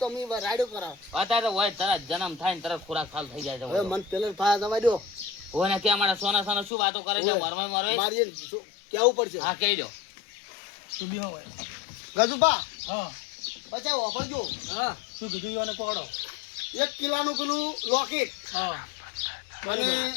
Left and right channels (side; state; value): right; drops out; at 6.7 s